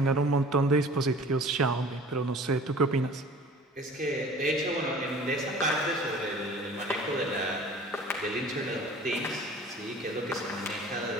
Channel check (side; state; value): both; normal; correlation 0.45